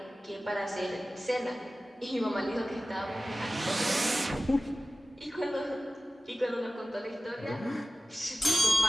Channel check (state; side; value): normal; both; correlation 0.95